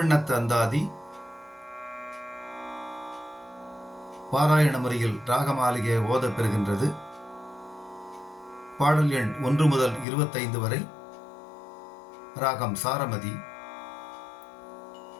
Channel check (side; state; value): right; drops out; at 10.1 s